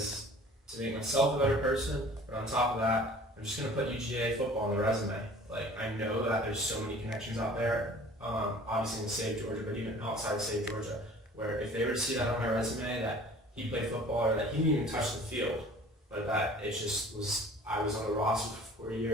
to make myself a better person, but on top of that, I'm just going to put UGA football on the resume. Like, I know that there's so many connections out there, obviously in the state of Georgia, but even outside the state of Georgia, where if they were to see that on my resume, that he played football or that he didn't even touch the field, but that it just was, I was on the roster for 4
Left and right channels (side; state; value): both; normal; correlation 0.47